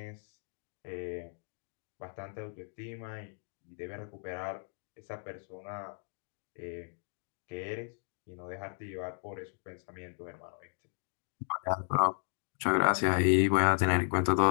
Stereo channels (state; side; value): silent; right; 55 dB below the other